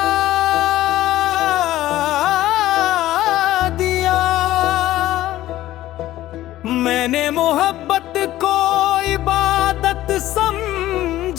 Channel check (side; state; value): right; quieter; 14.8 dB